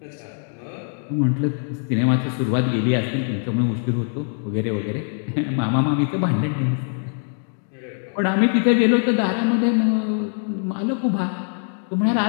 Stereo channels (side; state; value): right; silent; 58 dB below the other